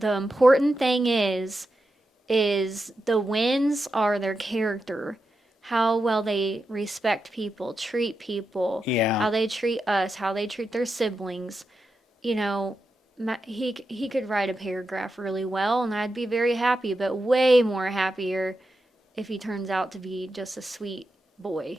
important thing is the wins are their character, how well they respect people, treat people, Yeah. how they treat us, how they treat their siblings. You know, he could write a paragraph really well, and I'd be very happy, but way more happier if he turns out to be just a sweet boy,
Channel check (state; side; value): normal; both; correlation 0.88